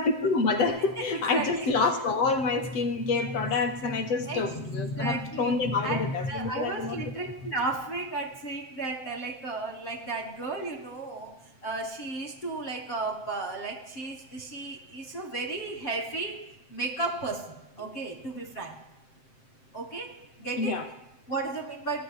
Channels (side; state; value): right; late; 7.7 ms